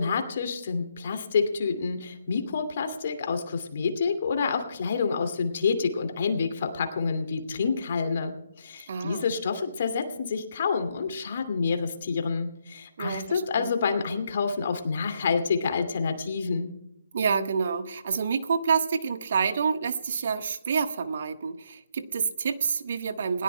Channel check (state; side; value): inverted; both; correlation -0.76